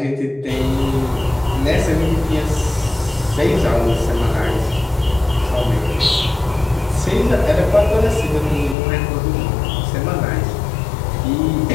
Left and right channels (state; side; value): drops out; right; at 8.8 s